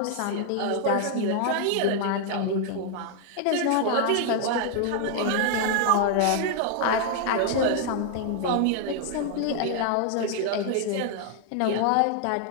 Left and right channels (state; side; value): different; both; correlation 0.00